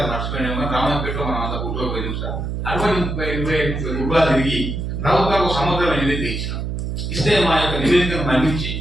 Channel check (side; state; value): right; noise; hum, 3 dB below the sound